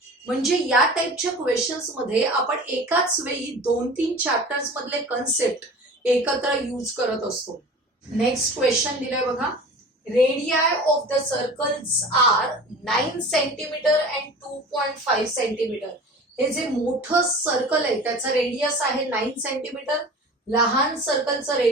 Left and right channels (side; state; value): both; normal; correlation 0.39